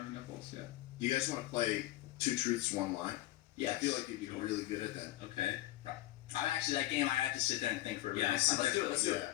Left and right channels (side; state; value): right; quieter; 16.8 dB